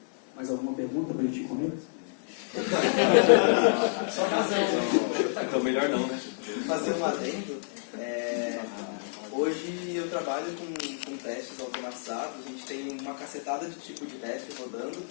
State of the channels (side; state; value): right; silent; 58 dB below the other